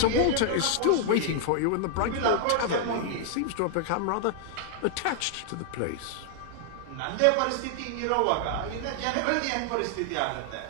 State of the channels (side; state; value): both; different; correlation 0.00